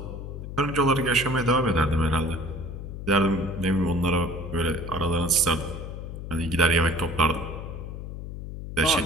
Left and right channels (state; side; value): noise; left; hum, 8 dB below the sound